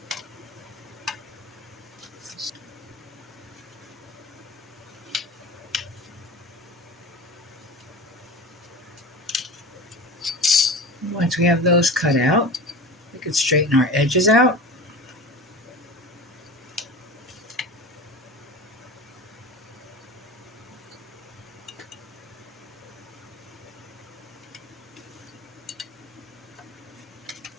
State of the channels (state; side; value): normal; both; correlation 0.32